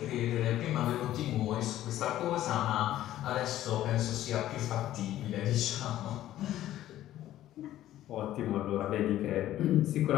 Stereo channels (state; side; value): quieter; right; 13.4 dB